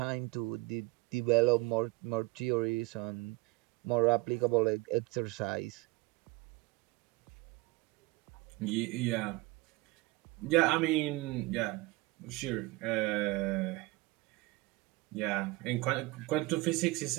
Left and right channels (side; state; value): left; quieter; 21.9 dB